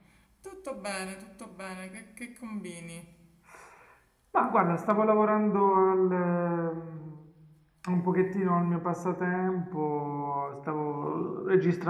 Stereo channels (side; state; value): both; identical; correlation 1.00